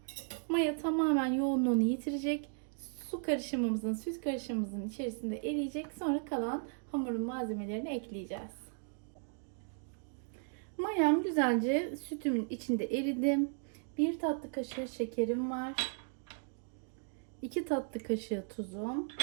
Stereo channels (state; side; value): silent; left; 54 dB below the other